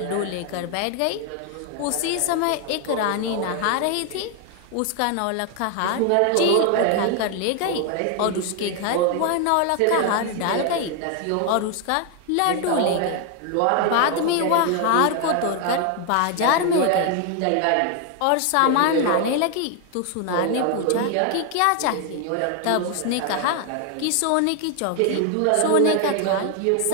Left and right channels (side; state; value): both; different; correlation 0.01